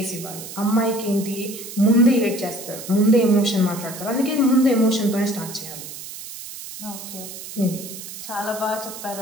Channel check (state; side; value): noise; right; hiss, 11 dB below the sound